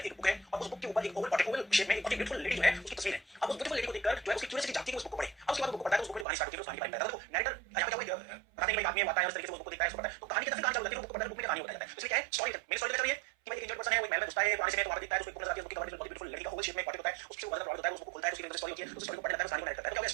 एक बुक है और उस बुक के ऊपर एक ओवल पोर्ट्रेट, ओवल शेप में एक ब्यूटीफुल लेडी जो है उसकी तस्वीर है। अब उस ब्यूटीफुल लेडी को देखकर जो है उसकी क्यूरियोसिटी जागती है, उस बुक को पढ़े। अब उसके बाद बुक को पढ़ता है तो उस बुक की कहानी स्टार्ट होती है, उस कहानी के बारे में बताता है। तो नैरेटर यहां पे क्या हुआ, बताते हैं कि एक आदमी आता है और इस तरीके से उस बुक को देखता है, उसको पढ़ता है, तो कहानी की तरफ कहानी चालू होती है, बुक को पढ़ता है, बुक में कहानी बताया जाता है। इसलिए क्या है स्टोरी, मेरी स्टोरी चल रही है कि भाई एक इंजर्ड पर्सन है, वो महल में घुसता है पुराने से में, तो वहां पे देखता है उसको एक बुक नजर आती है, उसकी कहानी बहुत ब्यूटीफुल लेडी का ओवल शेप में पोर्ट्रेट होता है, उससे वो प्रभावित होता है, उस बुक को खोलता है, उसकी स्टोरी होती है, उस स्टोरी को पढ़ने लगता है, उस कहानी को नरेट करता है। तो क्या होगा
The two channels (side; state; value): left; drops out; at 6.2 s